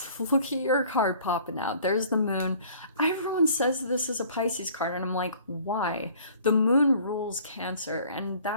Look at your card popping out. There's the moon. Everyone says this is a Pisces card, and I'm like, why? The moon rules Cancer, and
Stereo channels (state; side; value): inverted; both; correlation -0.53